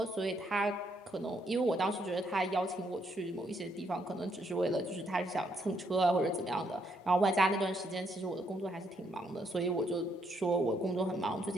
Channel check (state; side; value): normal; both; correlation 0.74